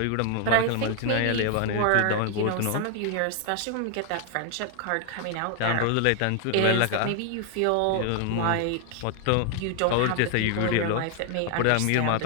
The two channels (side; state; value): both; different; correlation 0.00